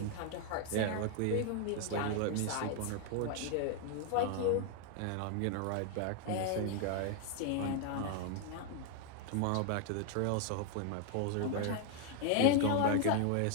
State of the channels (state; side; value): different; both; correlation 0.00